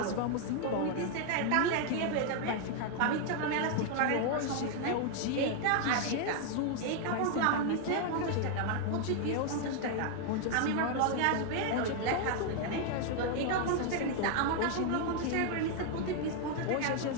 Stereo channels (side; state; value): both; different; correlation 0.00